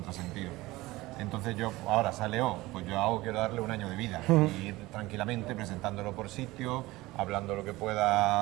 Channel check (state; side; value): quieter; left; 19.4 dB